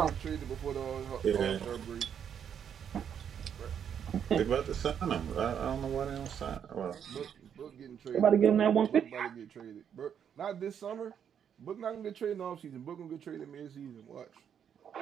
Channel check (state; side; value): quieter; left; 8.3 dB